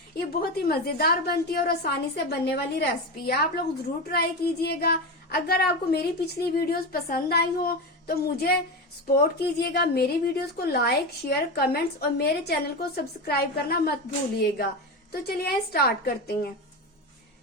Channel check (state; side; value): normal; both; correlation 0.19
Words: ये बहुत ही मजेदार बनती है और आसानी से बनने वाली रेसिपी है। आप लोग जरूर ट्राई कीजिएगा। अगर आपको मेरी पिछली वीडियोस पसंद आई हो तो मुझे सपोर्ट कीजिएगा। मेरी वीडियोस को लाइक, शेयर, कमेंट्स और मेरे चैनल को सब्सक्राइब करना मत भूलिएगा। तो चलिए स्टार्ट करते हैं।